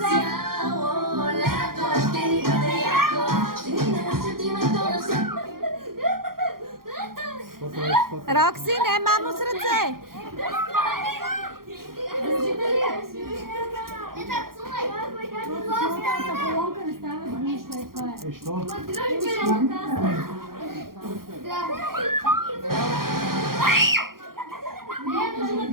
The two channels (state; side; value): late; left; 0.92 ms